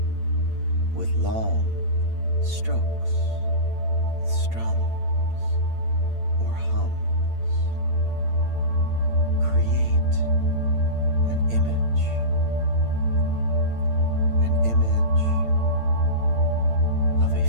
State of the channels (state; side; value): late; left; 8.8 ms